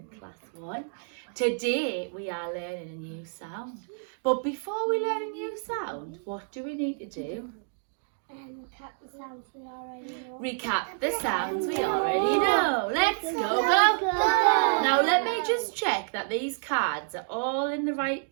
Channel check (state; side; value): silent; left; digital silence